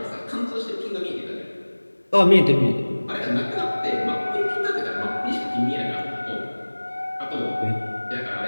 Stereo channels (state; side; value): inverted; both; correlation -1.00